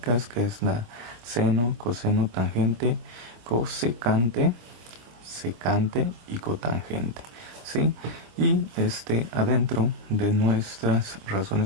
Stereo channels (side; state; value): left; late; 26 ms